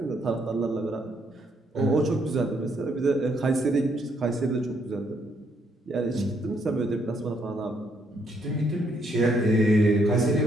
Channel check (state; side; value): normal; both; correlation 0.72